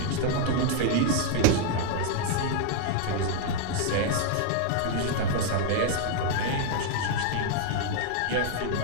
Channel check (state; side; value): different; both; correlation 0.00